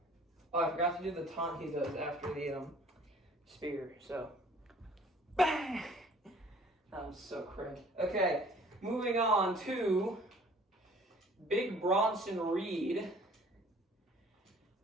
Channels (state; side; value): normal; both; correlation 0.53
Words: Oh, I forgot to do the taunt he does after the spear. So, bang! That was so cringe. Okay, moving on to Big Bronson Reed,